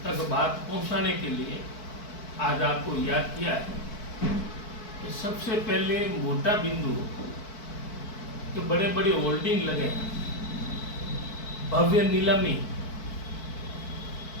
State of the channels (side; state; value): right; late; 4.6 ms